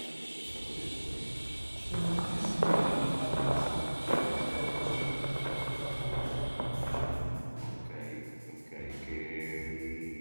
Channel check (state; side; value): inverted; both; correlation -1.00